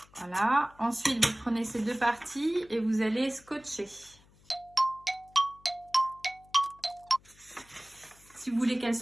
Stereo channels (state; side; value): noise; left; hum, 28 dB below the sound